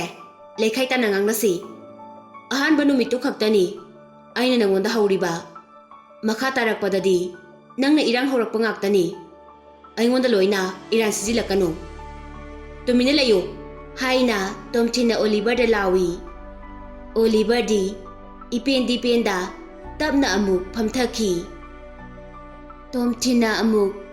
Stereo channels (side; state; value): both; identical; correlation 1.00